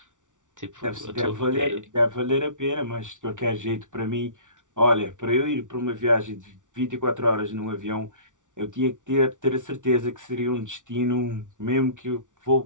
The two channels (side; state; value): left; late; 0.87 ms